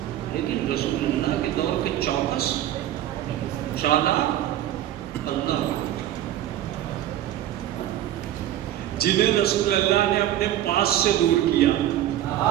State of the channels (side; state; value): left; quieter; 12.5 dB